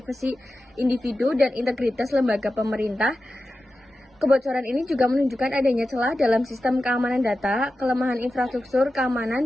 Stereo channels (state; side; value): normal; both; correlation 0.93